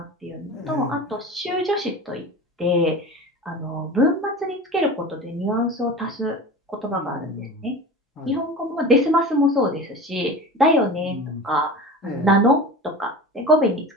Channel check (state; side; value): normal; both; correlation 0.33